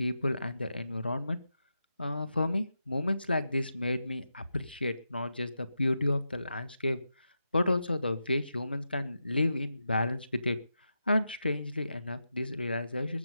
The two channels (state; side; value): inverted; both; correlation -0.88